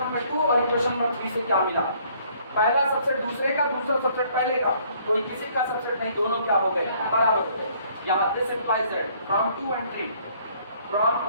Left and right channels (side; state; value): both; inverted; correlation -0.62